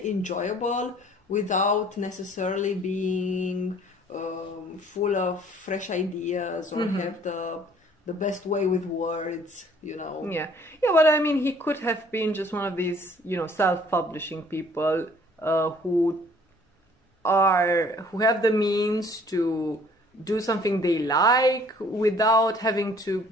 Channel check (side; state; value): both; normal; correlation 0.56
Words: enjoyable without necessarily being full of fresh ideas or have the best way with words, you know. Yeah, but I mean, he could have been just one of these, self-publishing people who have the means to do something they like without having to